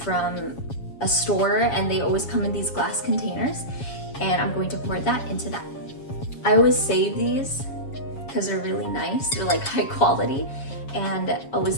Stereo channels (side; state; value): right; late; 7.3 ms